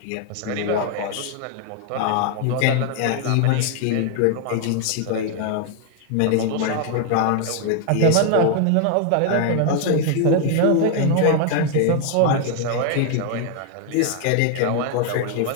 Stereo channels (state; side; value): different; both; correlation 0.00